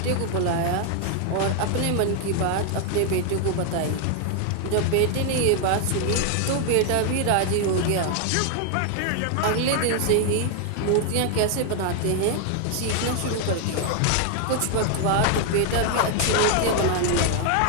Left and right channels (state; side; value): different; both; correlation 0.00